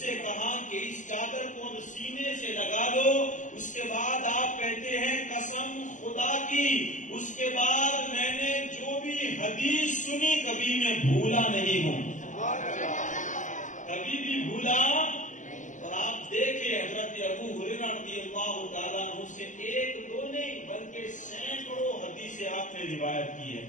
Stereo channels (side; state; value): right; late; 0.36 ms